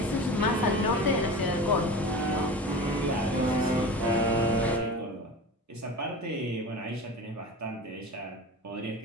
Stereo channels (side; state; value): both; normal; correlation 0.33